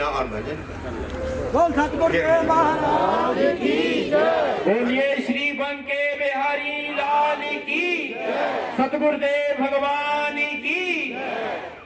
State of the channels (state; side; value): identical; both; correlation 1.00